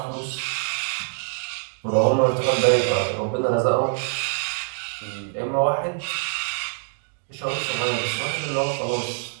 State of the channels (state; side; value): silent; left; digital silence